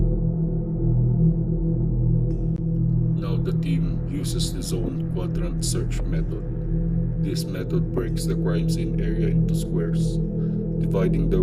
Now the team uses the zone quadrant search method. This method breaks the crime scene area into squares, dividing the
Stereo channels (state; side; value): identical; both; correlation 1.00